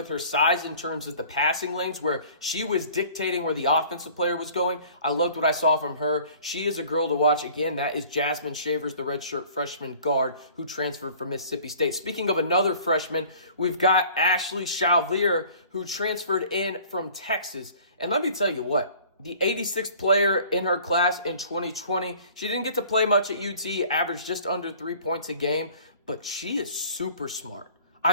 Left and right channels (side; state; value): both; inverted; correlation -0.50